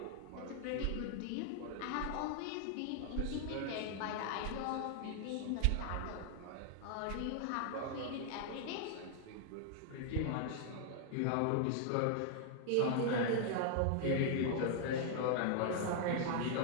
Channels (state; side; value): different; both; correlation 0.00